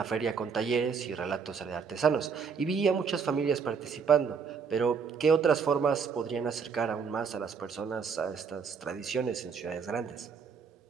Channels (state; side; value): quieter; left; 6.0 dB